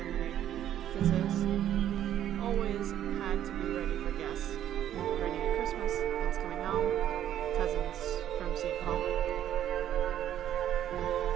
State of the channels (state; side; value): quieter; left; 11.1 dB